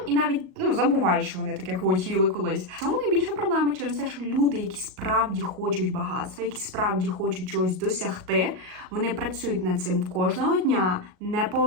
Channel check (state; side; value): late; left; 38 ms